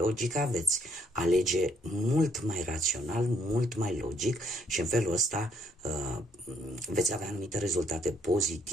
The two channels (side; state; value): both; normal; correlation 0.69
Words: veți alege mult mai rațional, mult mai logic și în felul ăsta veți avea anumite rezultate